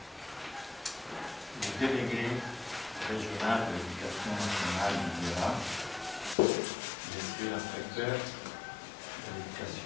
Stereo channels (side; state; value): right; drops out; at 6.4 s